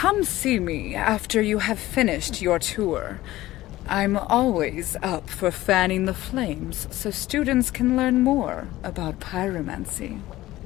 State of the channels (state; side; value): quieter; right; 16.4 dB